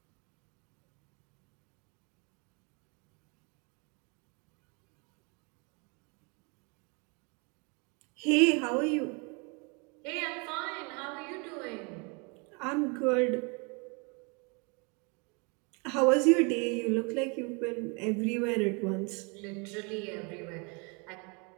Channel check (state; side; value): quieter; left; 32.4 dB